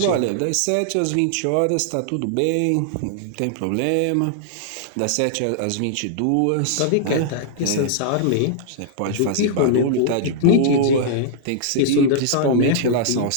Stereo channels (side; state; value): both; different; correlation -0.01